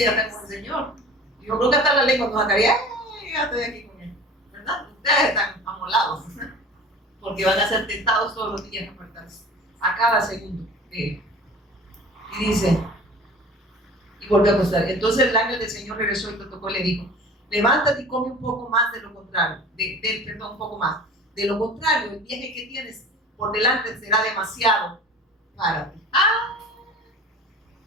ya está con el Señor. Yo creo que hasta la lengua nos sacaría, ya estoy aquí con él, ¿verdad? Ustedes están amolados, porque van a ser tentados todos los días a apartarse, a cada segundo. Y dice, y volvió a acostar. Entonces el ángel del Señor regresó y lo tocó y le dijo, levántate y come un poco más de lo contrario, un poco más. De lo contrario, el viaje que tienes por delante será demasiado para ti.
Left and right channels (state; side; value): normal; both; correlation 0.41